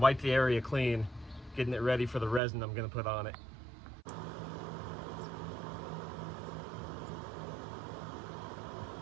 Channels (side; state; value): left; drops out; at 2.4 s